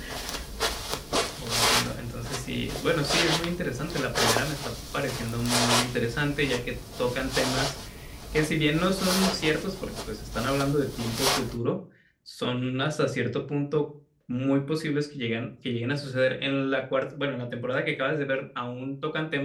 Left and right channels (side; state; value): both; identical; correlation 1.00